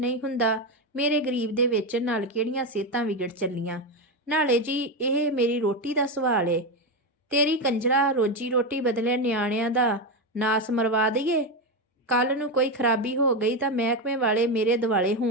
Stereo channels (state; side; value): normal; both; correlation 0.12